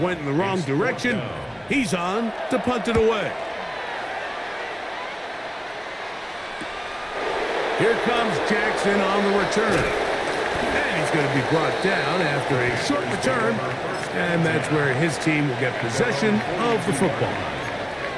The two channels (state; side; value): identical; both; correlation 1.00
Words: went in the wrong direction, he's on to punt it away. Here comes Jackson on the return. And he's going to be brought down after a short return. And that's where his team will get possession of the football.